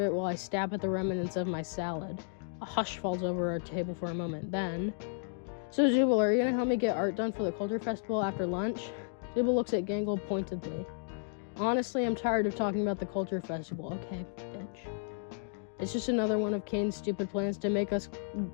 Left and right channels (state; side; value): silent; right; digital silence